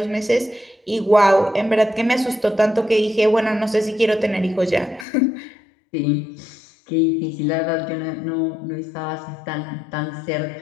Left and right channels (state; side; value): drops out; right; at 5.1 s